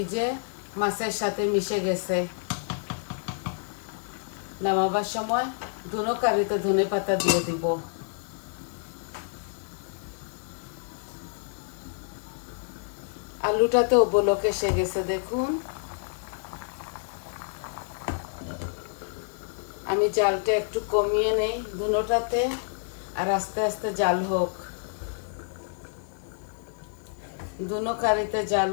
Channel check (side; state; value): right; silent; 59 dB below the other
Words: যে মাছের সাথে মিশে গেছে। নামাবার সময় দুনো কারিতে ধনে পাতা দিয়ে দিব। আলুটাতেও বলক এসে গেছে দেখুন। আমি জালটা একটু কমিয়ে নেই দুনোটাতে, আর আস্তে আস্তে জাল হোক, দুনো কারিতে জাল